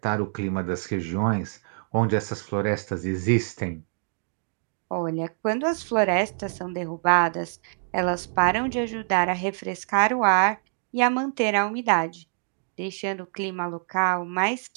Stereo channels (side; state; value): left; silent; digital silence